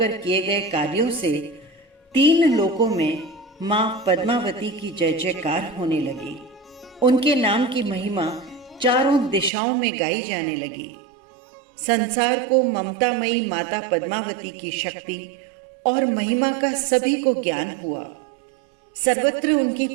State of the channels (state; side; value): drops out; left; at 9.5 s